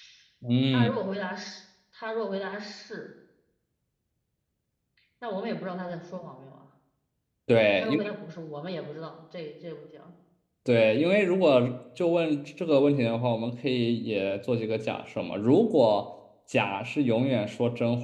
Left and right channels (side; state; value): both; identical; correlation 1.00